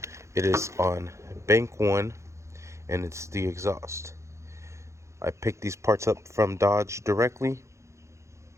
It is on bank 1, and it's the exhaust. I picked these parts up from Dodge directly.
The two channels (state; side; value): late; left; 0.14 ms